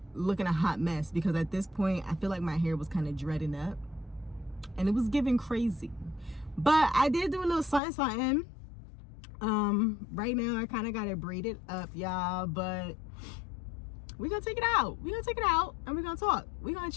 looking a hot mess, because at this point, I feel like my hair was kind of dreading up. And it was giving crazy. But I did do a little something. Right now, I kind of got it braided up, y'all. But we're going to take it out. We're going to take it out and we're going to talk. We're going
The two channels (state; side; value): drops out; right; at 7.8 s